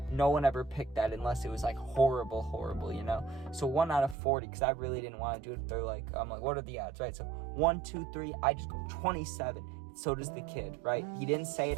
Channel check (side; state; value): left; drops out; at 4.2 s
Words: no one ever picked that unless it was like horrible, you know? So 1 out of 40, because I really didn't want to do it. They're like, I'm like, what are the odds, right? So 1, 2, 3, I just go 27. So does the kid, right? He didn't say it